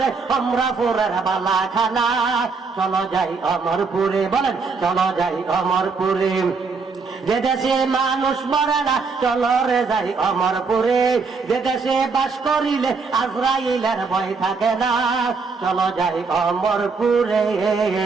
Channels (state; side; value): quieter; left; 4.7 dB